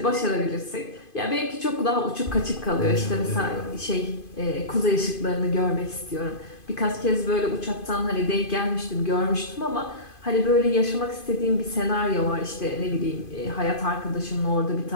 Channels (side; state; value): right; late; 2.5 ms